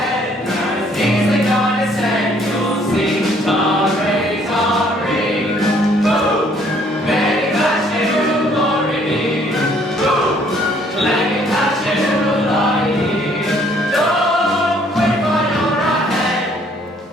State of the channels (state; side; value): normal; both; correlation 0.62